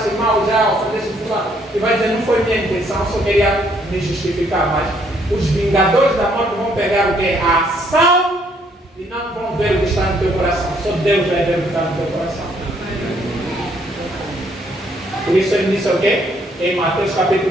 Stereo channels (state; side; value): normal; both; correlation 0.68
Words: mal, já ofendeste fulano, e vai dizer, não foi minha intenção, eu só queria me justificar, mas os vingadores da morte vão pegar o quê? A ação e não vão ver o que está no teu coração, só Deus vai ver o que está no teu coração. Por isso ele disse o quê? Em Mateus